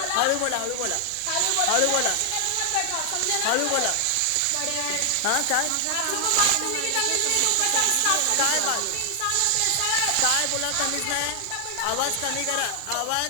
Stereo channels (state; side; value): different; both; correlation 0.00